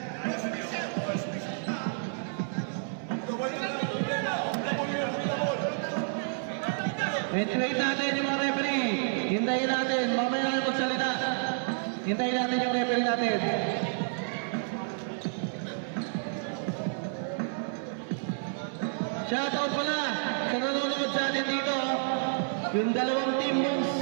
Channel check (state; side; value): silent; left; 58 dB below the other